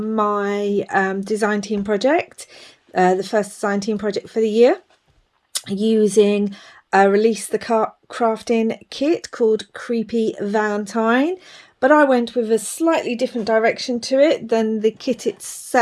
design team project, the first design team project for the year, using a Release the Craftin kit called Creepy Valentine, but I went with a slightly different direction to it than the kit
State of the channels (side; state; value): both; identical; correlation 1.00